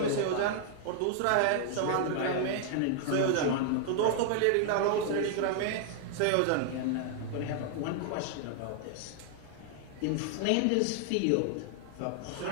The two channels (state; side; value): different; both; correlation 0.00